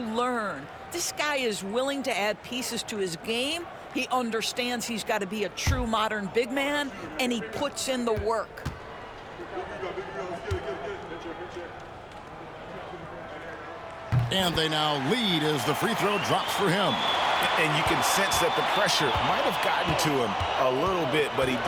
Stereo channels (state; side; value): identical; both; correlation 1.00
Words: This guy is willing to add pieces to his game. He understands he's got to be a true modern big man, and he puts in the work. And they now lead as the free throw drops for him. And you can sense that the pressure might have gotten to him a little bit, but he